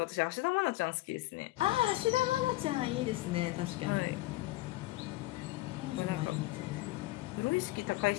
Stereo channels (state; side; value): quieter; right; 18.2 dB